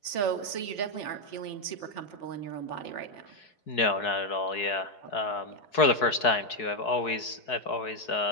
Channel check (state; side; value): late; right; 4.7 ms